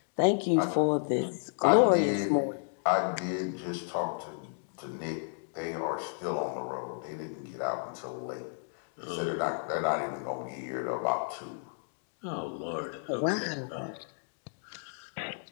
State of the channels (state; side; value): silent; right; digital silence